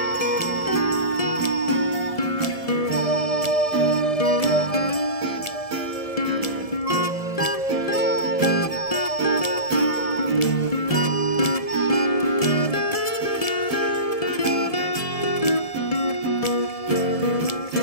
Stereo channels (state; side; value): late; right; 1.7 ms